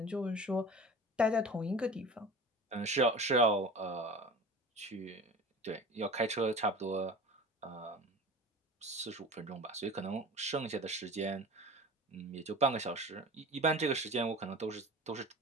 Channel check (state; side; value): normal; both; correlation 0.37